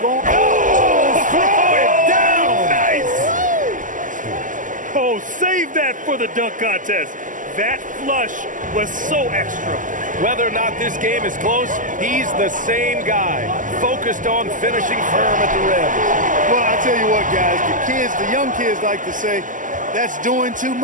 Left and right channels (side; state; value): left; late; 0.38 ms